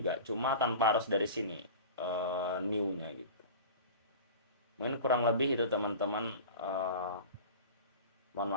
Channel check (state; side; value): inverted; both; correlation -0.36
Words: cuma tanpa harus dari sini new-nya gitu. Mungkin kurang lebih itu teman-teman, mohon